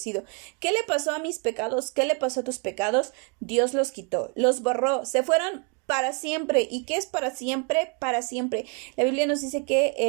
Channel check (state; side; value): quieter; left; 34.9 dB